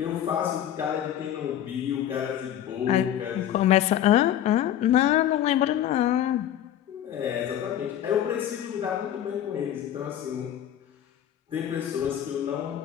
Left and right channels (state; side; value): quieter; right; 11.1 dB